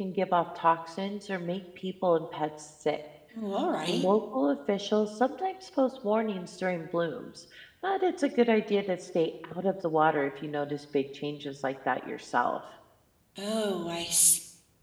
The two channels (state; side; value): identical; both; correlation 1.00